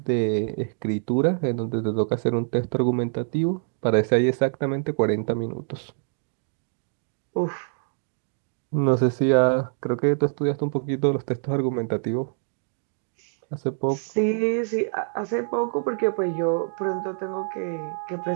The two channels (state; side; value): silent; left; digital silence